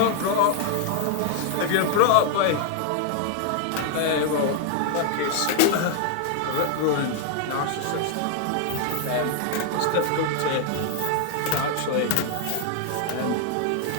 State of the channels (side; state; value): both; different; correlation 0.00